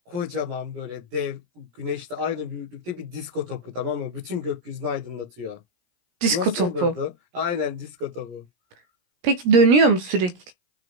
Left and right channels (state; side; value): late; left; 17 ms